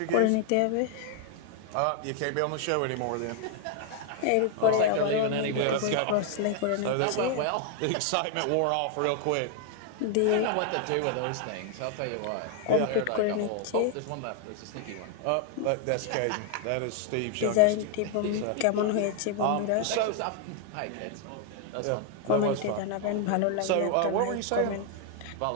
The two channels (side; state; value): both; different; correlation 0.00